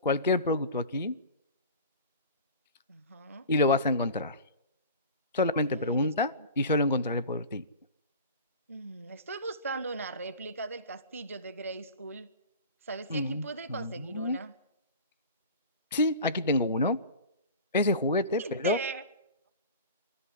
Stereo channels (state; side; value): inverted; both; correlation -0.35